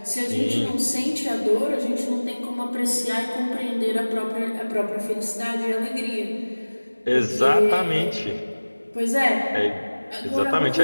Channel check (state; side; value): inverted; both; correlation -1.00